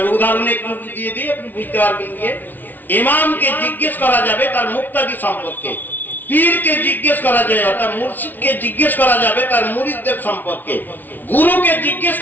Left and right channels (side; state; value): right; late; 0.085 ms